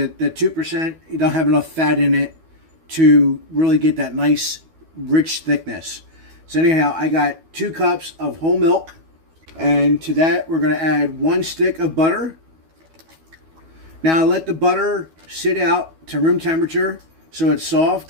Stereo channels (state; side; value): late; left; 12 ms